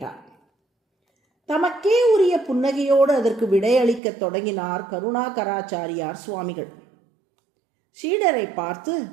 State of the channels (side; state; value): left; drops out; at 4.0 s